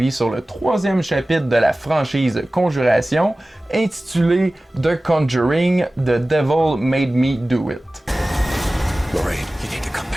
sur le 3e chapitre de la franchise Conjuration, intitulé The Conjuring, The Devil Made Me Do It. Lorraine, you need to come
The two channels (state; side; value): normal; both; correlation 0.97